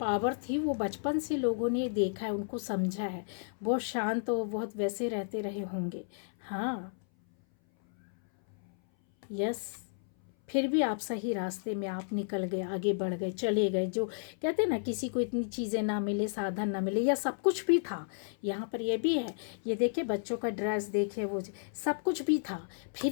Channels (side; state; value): right; silent; 56 dB below the other